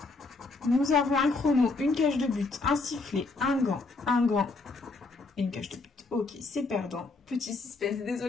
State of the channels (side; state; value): right; quieter; 3.6 dB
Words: Nous avons un chrono, une cage de but, un sifflet, un gant et une cage de but. Ok, c'est perdant. Petit suspense.